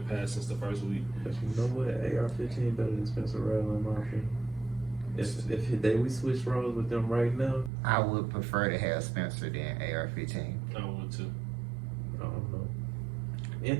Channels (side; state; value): left; drops out; at 7.7 s